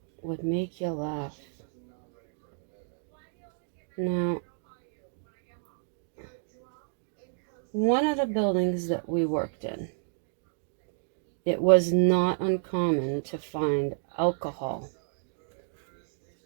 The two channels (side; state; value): left; silent; digital silence